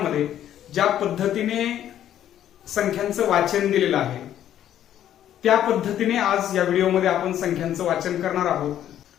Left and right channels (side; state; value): right; quieter; 11.1 dB